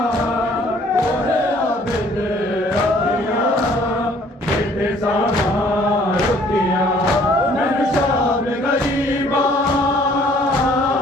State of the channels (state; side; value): normal; both; correlation 0.59